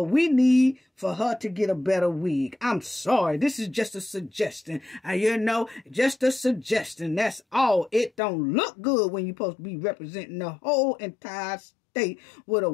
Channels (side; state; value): right; drops out; at 8.2 s